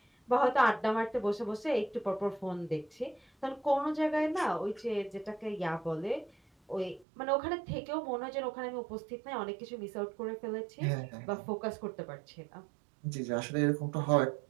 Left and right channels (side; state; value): left; drops out; at 7.1 s